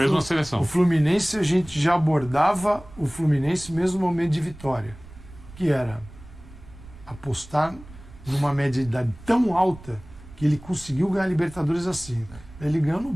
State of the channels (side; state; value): right; noise; rumble, 19 dB below the sound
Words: na seleção. O Fluminense, a gente já abordava o Fluminense mesmo no momento de vitória, que era apostar numa média de idade tão alta que ele conseguiu ganhar Libertadores assim. Ele ganhou no